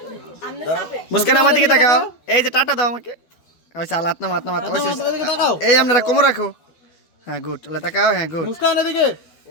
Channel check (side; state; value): right; late; 12 ms